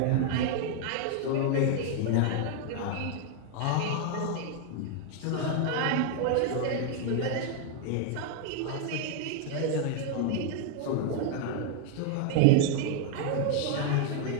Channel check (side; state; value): both; different; correlation 0.00